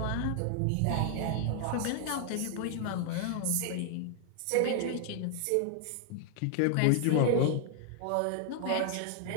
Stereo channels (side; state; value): both; different; correlation 0.00